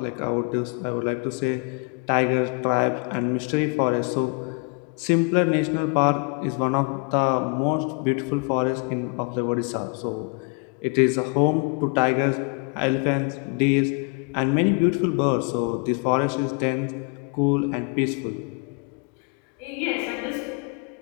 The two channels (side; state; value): right; quieter; 34.7 dB